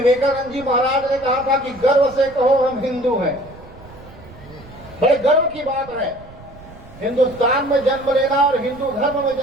जी महाराज ने कहा था कि गर्व से कहो हम हिंदू हैं। बड़े गर्व की बात है। हिंदुस्तान में जन्म लेना और हिंदू धर्म में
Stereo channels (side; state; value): right; noise; rumble, 20 dB below the sound